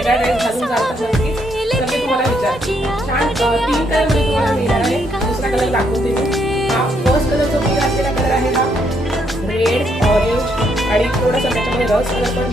ड्रेस घालून जातात नक्कीच. तर मी तुम्हाला विचारते छान 3 कलर मध्ये तुम्हाला मिळणार आहे. दुसरा कलर दाखवते मी. हा फर्स्ट कलर जो मी घातलेला कलर आहे हा रेड ऑरेंज आणि थोडासा त्याच्यामध्ये रस कलर पण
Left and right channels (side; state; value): both; normal; correlation 0.74